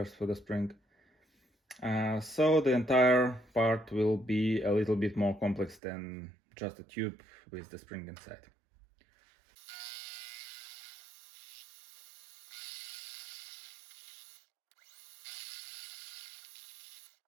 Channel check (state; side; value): drops out; left; at 5.8 s